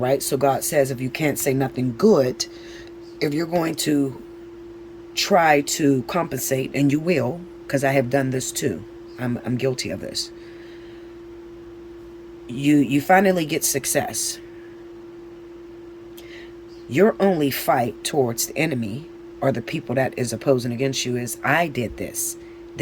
So God says, if you can't say nothing good, if you're going to try to compensate, and you will, because I have done this too. I'm guilty of this. You finally get success. Your only fight towards the enemy, or the people that is opposing against you, is, I did this.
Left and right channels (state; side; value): identical; both; correlation 1.00